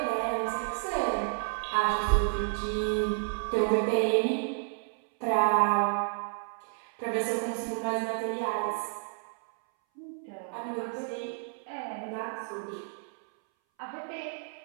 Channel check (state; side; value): silent; left; 57 dB below the other